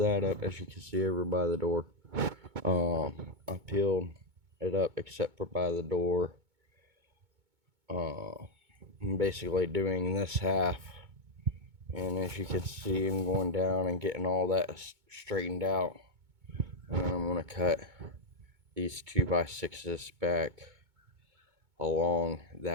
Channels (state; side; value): late; left; 2.2 ms